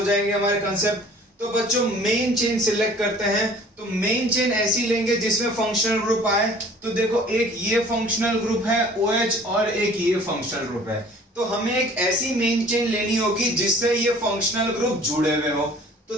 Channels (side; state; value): both; normal; correlation 0.50